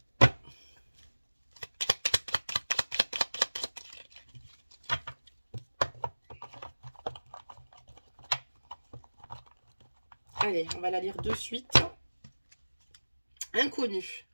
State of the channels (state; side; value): inverted; both; correlation -1.00